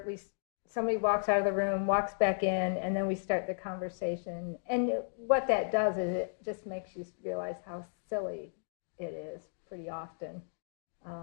Somebody walks out of the room, walks back in, and then we start the conversation. And what that does is it just makes you realize how silly it is pretty often.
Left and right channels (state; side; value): silent; right; digital silence